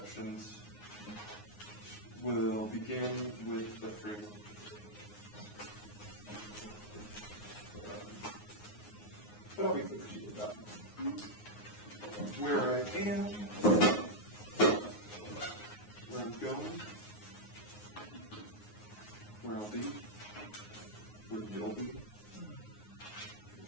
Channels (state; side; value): late; right; 9.6 ms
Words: will begin with the framework. But I'll be clear to you about where I am, where I'm going, where I'll be, where you'll be.